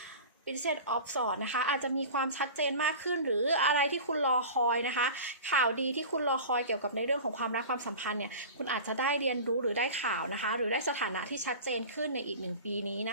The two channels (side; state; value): both; inverted; correlation -0.35